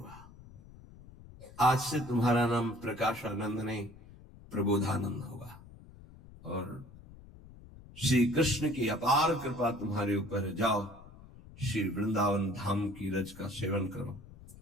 आज से तुम्हारा नाम प्रकाशानंद नहीं, प्रबोधानंद होगा, और श्री कृष्ण की अपार कृपा तुम्हारे ऊपर, जाओ श्री वृंदावन धाम की रज का सेवन करो।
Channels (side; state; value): left; noise; rumble, 20 dB below the sound